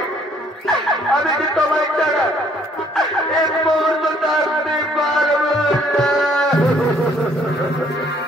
আমি যে তোমায় ছাড়া এক মুহূর্ত থাকতে পারবো না।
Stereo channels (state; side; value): normal; both; correlation 0.63